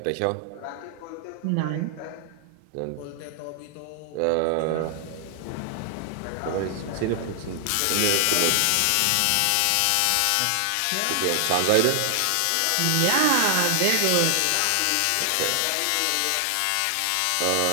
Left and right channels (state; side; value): different; both; correlation 0.00